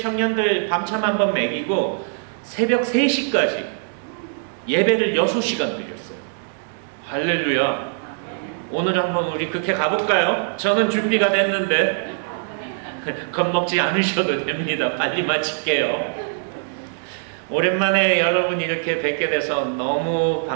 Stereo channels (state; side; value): silent; left; 63 dB below the other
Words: 청년들 밤참 한번 먹이고 새벽 3시까지 예배를 6시간 드렸어요. 할렐루야. 오늘 한번 우리 그렇게 가볼까요? 저는 준비가 됐는데 겁먹지 않으셔도 됩니다. 빨리 마칠게요. 오랜만에 여러분 이렇게 뵙게 돼서 너무